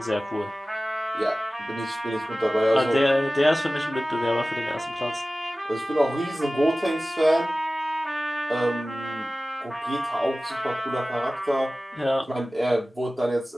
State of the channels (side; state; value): both; normal; correlation 0.97